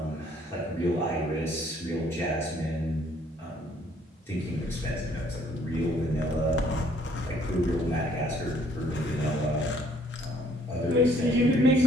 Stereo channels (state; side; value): normal; both; correlation 0.63